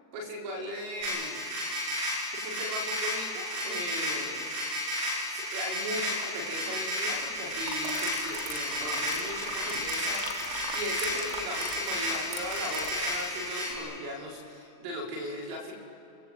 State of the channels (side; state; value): left; late; 40 ms